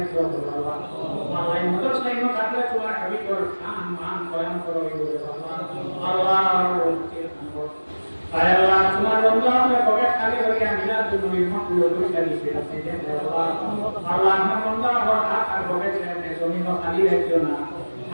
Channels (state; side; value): inverted; both; correlation -1.00